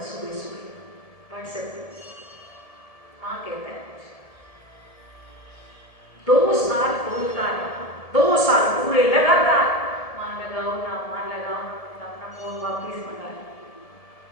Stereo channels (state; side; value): late; right; 1.7 ms